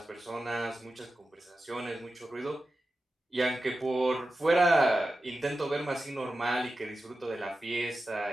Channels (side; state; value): both; normal; correlation 0.92